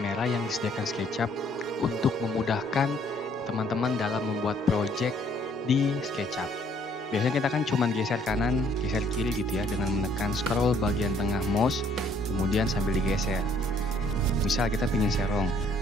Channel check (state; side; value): normal; both; correlation 0.63